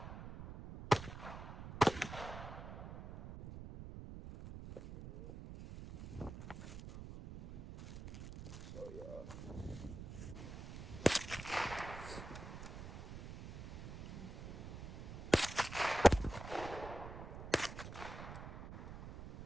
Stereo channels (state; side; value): noise; right; rumble, 10 dB below the sound